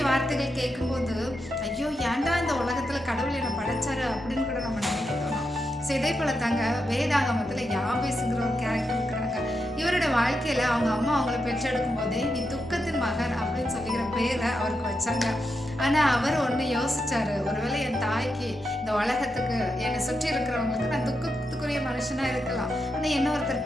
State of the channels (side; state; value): both; normal; correlation 0.86